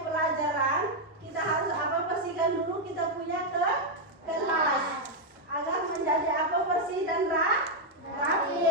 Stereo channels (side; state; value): both; normal; correlation 0.02